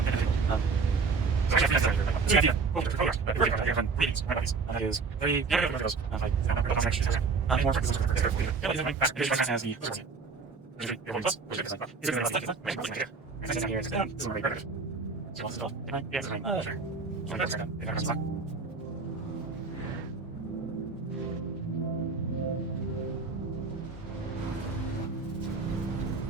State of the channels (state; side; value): quieter; left; 4.6 dB